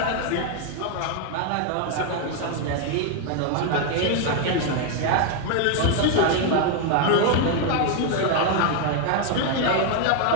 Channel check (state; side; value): different; both; correlation 0.01